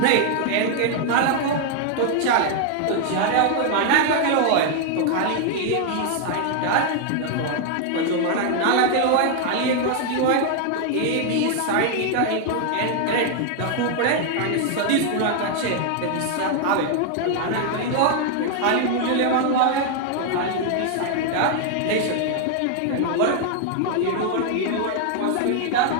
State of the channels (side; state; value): both; different; correlation 0.00